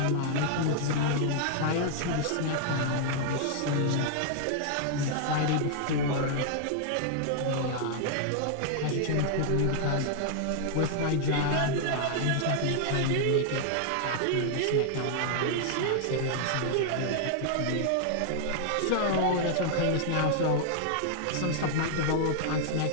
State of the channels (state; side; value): different; both; correlation -0.01